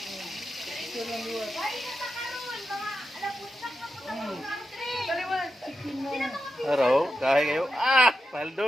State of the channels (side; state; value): both; normal; correlation 0.89